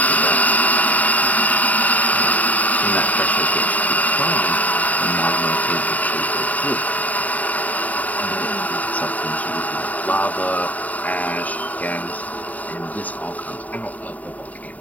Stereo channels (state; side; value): late; right; 0.075 ms